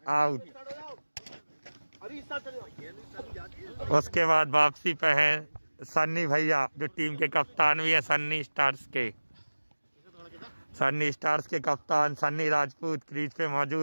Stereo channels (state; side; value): inverted; both; correlation -1.00